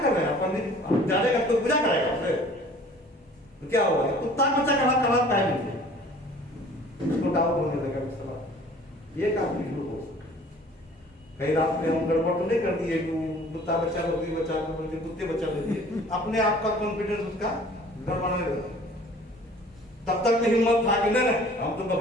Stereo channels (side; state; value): both; normal; correlation 0.50